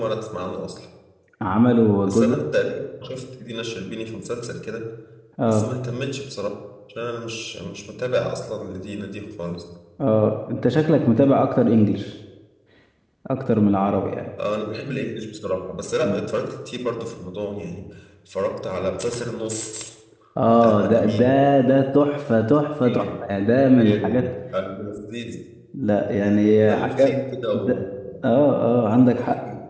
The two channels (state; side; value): identical; both; correlation 1.00